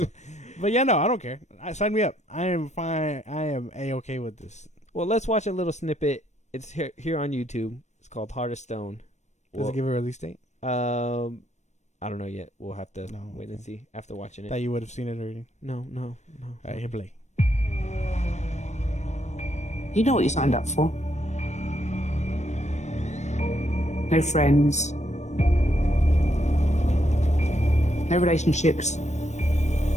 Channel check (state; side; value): late; right; 0.34 ms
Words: one. But yeah, no, I don't care. Sign me up. I am fine. I am A-okay with this. Well, let's watch a little snippet. It's here on YouTube. It's called Heart of Stone. Does it give a release date? I don't know yet. We'll have to wait and okay. see after watching it. That you would have seen it already. No. All right, hit play. You know what you signed up for. No friends. No relationships.